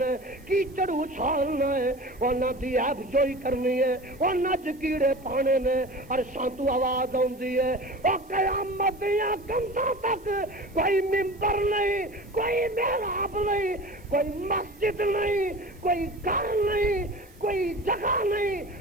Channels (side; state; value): right; noise; hiss, 30 dB below the sound